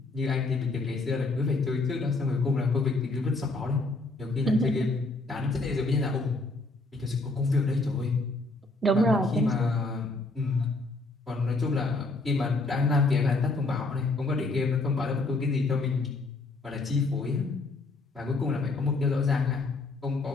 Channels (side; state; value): right; quieter; 3.2 dB